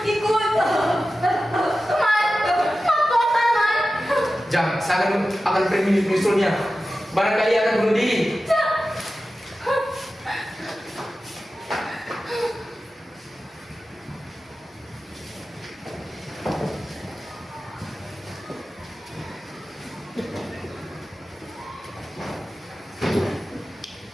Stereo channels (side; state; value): both; normal; correlation 0.94